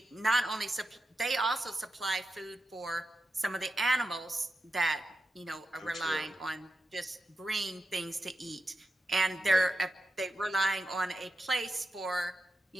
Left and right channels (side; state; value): both; normal; correlation 0.88